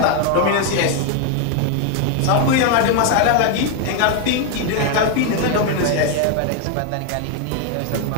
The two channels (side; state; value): both; different; correlation 0.01